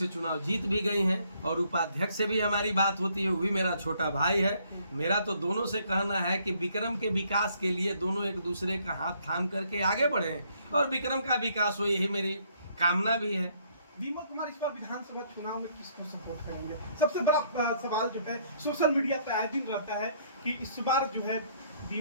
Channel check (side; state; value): both; inverted; correlation -0.66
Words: चुनाव जीत भी गई हैं। और उपाध्यक्ष से भी हमारी बात होती है, वो भी मेरा छोटा भाई है। मेरा तो दोनों से कहना है कि विक्रम के विकास के लिए दोनों एक दूसरे का हाथ थाम करके आगे बढ़े और विक्रम का विकास हो, यही मेरी कामना भी है। विमल कुमार इस बार विधानसभा चुनाव में किसको सपोर्ट करेंगे? सबसे बड़ा सवाल जो है सोशल मीडिया पे आए दिन रहता है कि इस बार जो है